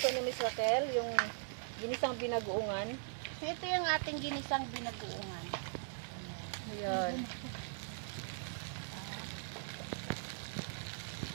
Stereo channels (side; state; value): left; silent; digital silence